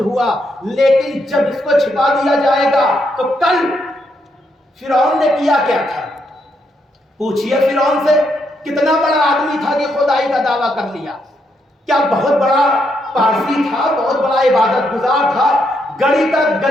لیکن جب اس کو چھپا دیا جائے گا تو کل فرعون نے کیا کیا تھا؟ پوچھئے فرعون سے، کتنا بڑا آدمی تھا کہ خدائی کا دعویٰ کر لیا؟ کیا بہت بڑا پارسی تھا، بہت بڑا عبادت گزار تھا،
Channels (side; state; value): both; normal; correlation 0.78